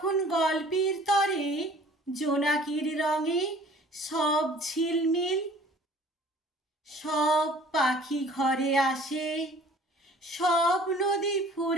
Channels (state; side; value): normal; both; correlation 0.51